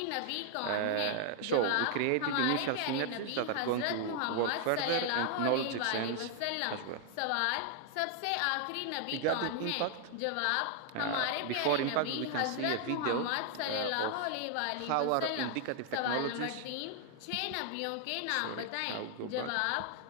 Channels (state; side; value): different; both; correlation 0.00